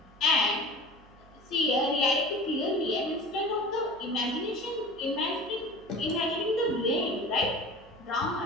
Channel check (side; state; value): right; noise; hum, 25 dB below the sound